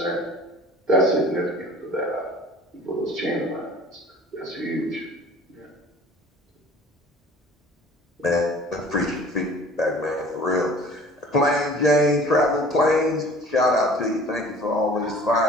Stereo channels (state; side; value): normal; both; correlation 0.47